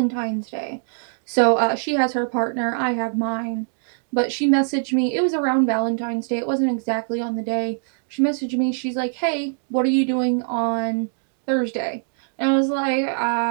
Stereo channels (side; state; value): left; silent; 64 dB below the other